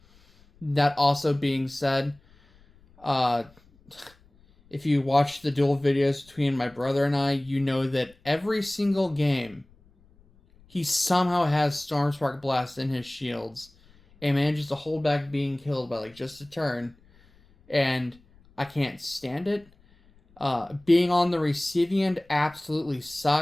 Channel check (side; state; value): left; noise; rumble, 29 dB below the sound